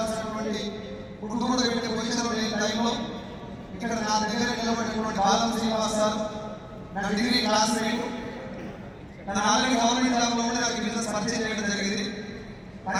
ఫుడ్ కూడా పెట్టే పొజిషన్లో లేని టైంలో ఇక్కడ నా దగ్గర నిలబడినటువంటి బాలం శ్రీనివాస్ సార్ నా డిగ్రీ క్లాస్మేట్. తను ఆల్రెడీ గవర్నమెంట్ జాబ్లో ఉండి నాకు బిజినెస్ పరిచయం చేయడం జరిగింది.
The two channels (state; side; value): identical; both; correlation 1.00